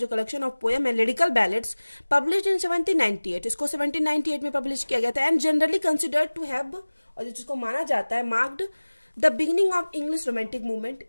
कलेक्शन ऑफ पोएम है लिरिकल बैलेड्स, पब्लिश इन 1798, इसको 1798 में पब्लिश किया गया था, and generally considered to have, और जिसको माना जाता है, marked the beginning of English romantic movement,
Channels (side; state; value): both; inverted; correlation -1.00